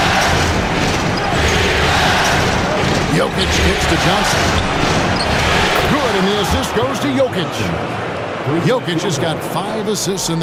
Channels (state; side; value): identical; both; correlation 1.00